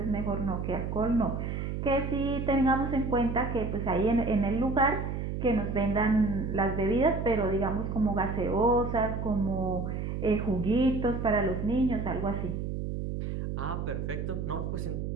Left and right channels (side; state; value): right; noise; hum, 3 dB below the sound